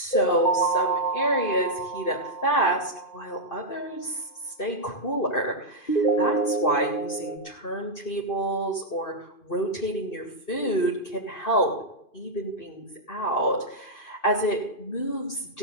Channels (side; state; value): right; late; 2.5 ms